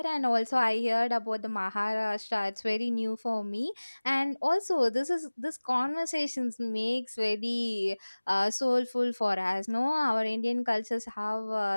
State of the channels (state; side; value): inverted; both; correlation -1.00